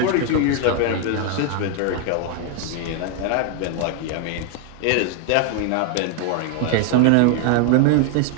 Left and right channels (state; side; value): different; both; correlation 0.01